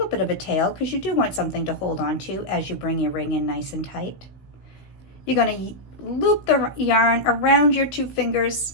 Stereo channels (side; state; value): right; late; 16 ms